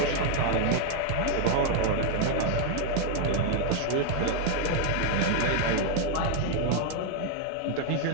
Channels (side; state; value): both; different; correlation 0.00